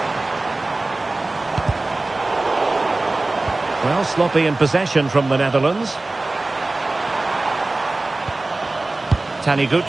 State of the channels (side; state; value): left; quieter; 3.0 dB